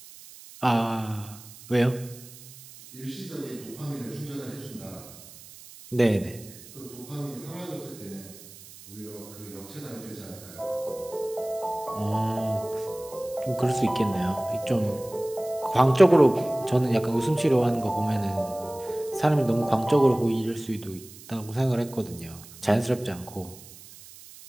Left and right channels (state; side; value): noise; right; hiss, 18 dB below the sound